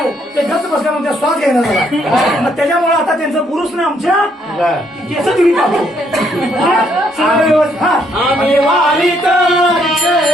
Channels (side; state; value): both; normal; correlation 0.71